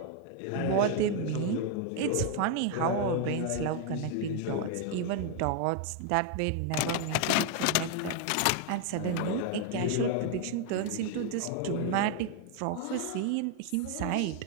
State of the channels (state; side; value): different; both; correlation 0.01